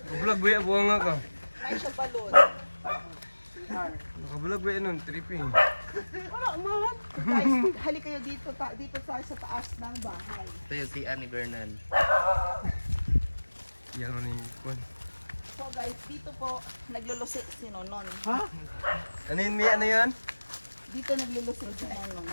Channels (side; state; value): both; inverted; correlation -1.00